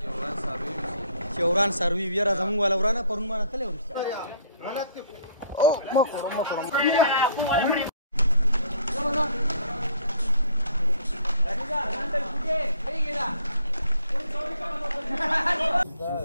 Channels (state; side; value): inverted; both; correlation -0.61